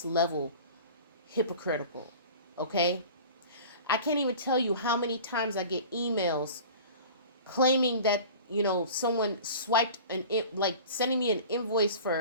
level hypocritical. Okay? I can't even tell you how many times I get emails claiming that, someone swiped like sending me an invoice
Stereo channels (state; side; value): inverted; both; correlation -0.40